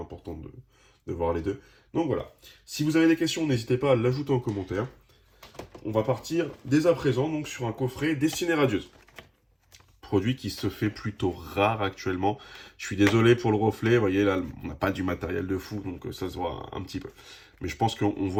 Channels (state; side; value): identical; both; correlation 1.00